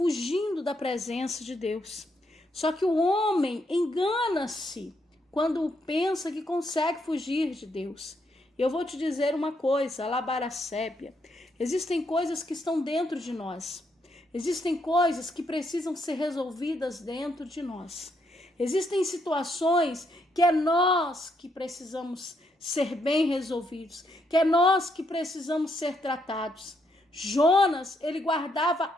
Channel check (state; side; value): normal; both; correlation 0.76